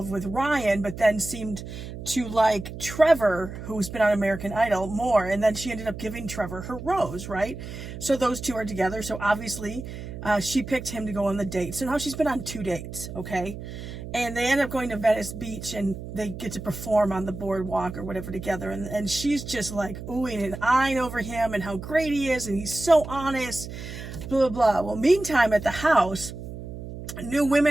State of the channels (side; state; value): right; noise; hum, 10 dB below the sound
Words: with Ryan, but then seemed to like Trevor, who's been on American Idol, more, and then she ended up giving Trevor her rose, right? So those two are together, so obviously she picked him to go on the date. So now she's been on 2 dates, okay? And they end up going to Venice Beach, and they get to perform on the boardwalk or whatever together. And she's just like oohing and eyeing over him and how great he is, and he's so honest, blah, blah, blah. Well, meantime, at the house, new